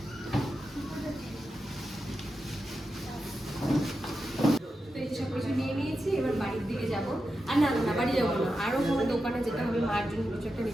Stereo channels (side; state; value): both; normal; correlation 0.89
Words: সব কিছু নিয়ে নিয়েছি, এবার বাড়ির দিকে যাবো। আর না না, বাড়ি যাবো না, আরও কোনো দোকানে যেতে হবে। মার জন্য কিছু একটা